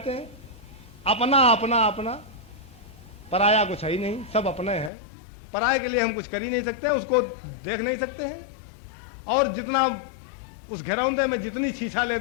हैं। अपना अपना अपना, पराया कुछ है ही नहीं, सब अपने हैं। पराये के लिए हम कुछ कर ही नहीं सकते, उसको देख नहीं सकते हैं। और जितना उस घरौंदे में जितनी छीछा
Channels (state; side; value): drops out; right; at 4.9 s